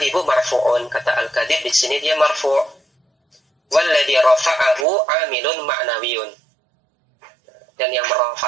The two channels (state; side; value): drops out; left; at 4.9 s